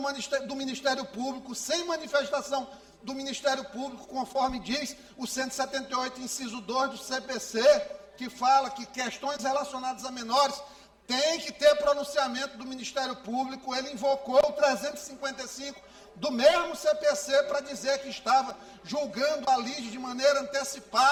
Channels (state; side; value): identical; both; correlation 1.00